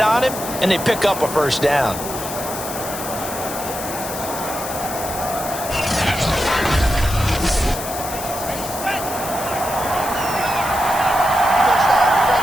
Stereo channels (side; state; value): left; noise; hiss, 9 dB below the sound